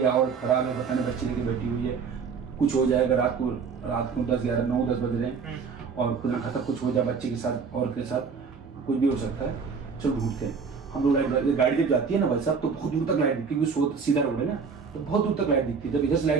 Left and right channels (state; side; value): quieter; left; 5.6 dB